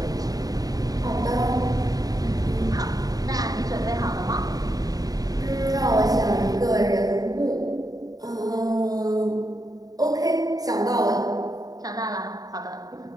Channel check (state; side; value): late; left; 0.18 ms